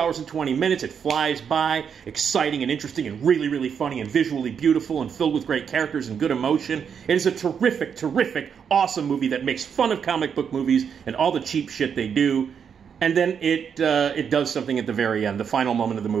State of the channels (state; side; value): quieter; left; 7.2 dB